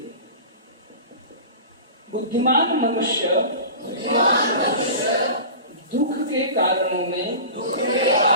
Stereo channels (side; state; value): both; inverted; correlation -0.35